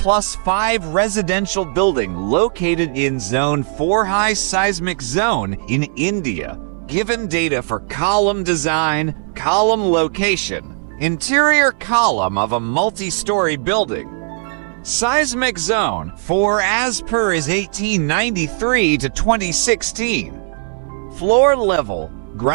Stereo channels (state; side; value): silent; left; 67 dB below the other